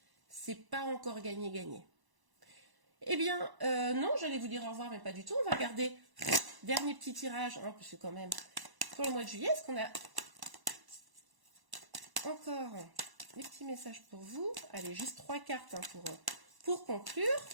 c'est pas encore gagné. Eh bien, non, j'allais vous dire au revoir, mais pas du tout. On va regarder dernier petit tirage, hein, parce que quand même, pour le mois de juillet, est-ce qu'on a encore des petits messages pour vous? Allez, juste 3 cartes hein, pour conclure.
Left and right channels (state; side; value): late; left; 1.0 ms